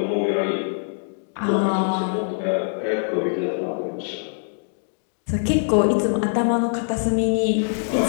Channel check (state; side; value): silent; right; 63 dB below the other